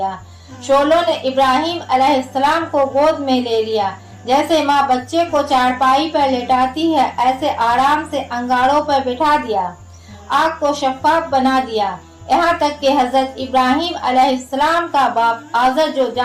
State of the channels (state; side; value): identical; both; correlation 1.00